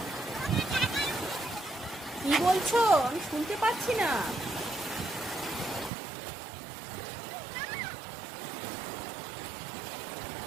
কি বলছো? আমি শুনতে পাচ্ছি না।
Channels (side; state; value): left; drops out; at 5.9 s